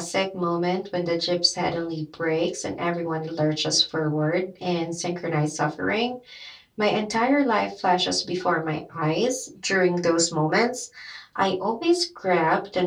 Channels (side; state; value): both; identical; correlation 1.00